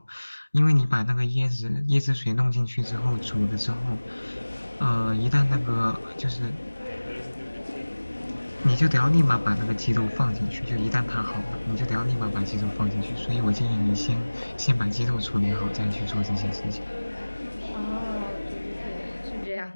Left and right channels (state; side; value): inverted; both; correlation -1.00